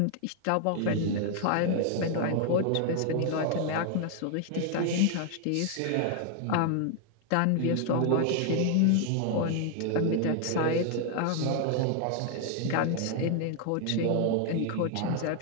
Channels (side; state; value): both; different; correlation 0.00